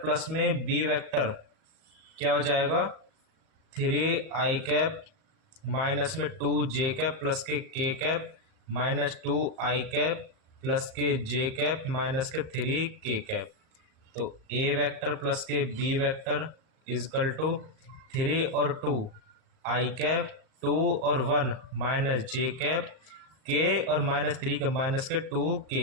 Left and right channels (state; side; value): late; left; 38 ms